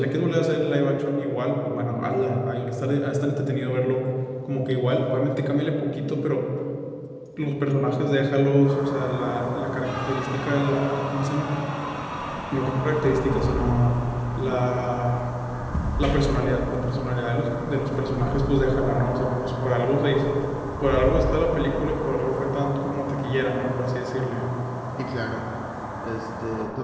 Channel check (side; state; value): both; identical; correlation 1.00